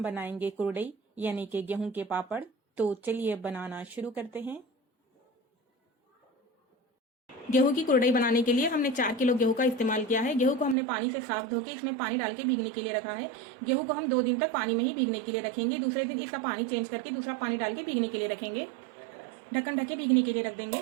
बनाएंगे कुरडई यानी कि गेहूं के पापड़। तो चलिए बनाना शुरू करते हैं। गेहूं की कुरडई बनाने के लिए हमने 4 किलो गेहूं का इस्तेमाल किया है। गेहूं को हमने पानी से साफ धो के इसमें पानी डाल के भीगने के लिए रखा है। गेहूं को हम 2 दिन तक पानी में ही भीगने के लिए रखेंगे। दूसरे दिन इसका पानी चेंज करके दूसरा पानी डाल के भीगने के लिए रखेंगे। ढक्कन ढक के भीगने के लिए रख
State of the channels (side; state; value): left; drops out; at 10.8 s